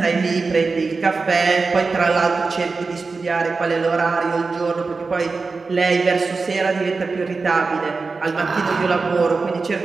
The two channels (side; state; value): left; quieter; 4.2 dB